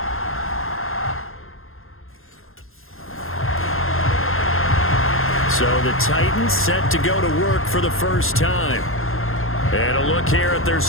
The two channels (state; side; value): late; right; 0.61 ms